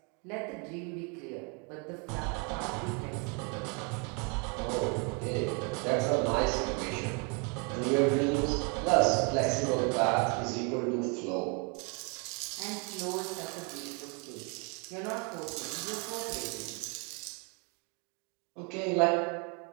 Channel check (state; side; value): quieter; left; 34.7 dB